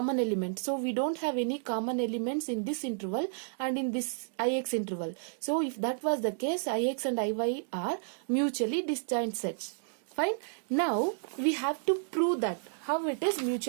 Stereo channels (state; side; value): silent; left; digital silence